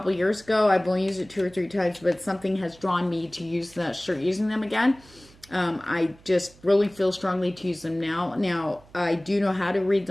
years ago. I've only used it 2 or 3 times, but something has drawn me to start using them again. I just really feel strongly to use them now. Now, I do know how to read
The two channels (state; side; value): noise; right; hum, 25 dB below the sound